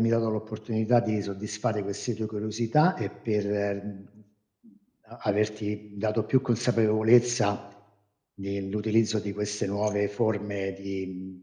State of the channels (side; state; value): both; identical; correlation 1.00